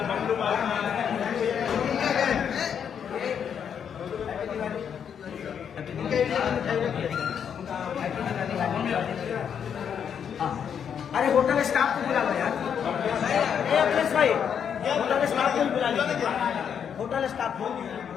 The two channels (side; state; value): right; quieter; 7.9 dB